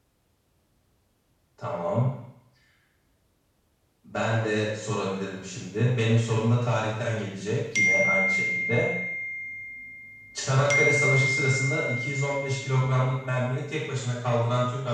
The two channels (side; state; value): both; identical; correlation 1.00